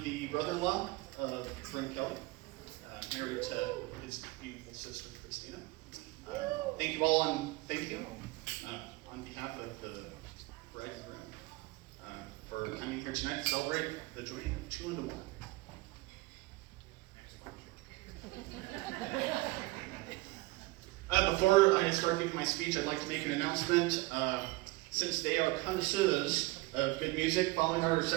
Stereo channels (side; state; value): left; quieter; 22.2 dB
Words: the brother-in-law of Brent Kelly, married to his beautiful sister, Christina. Thank you all, and thank you on behalf of the bride and groom for coming here tonight to celebrate the joining of 2 into 1. Before I start giving my speech, I'd like to make an announcement. Since they are connoisseurs of good music, following our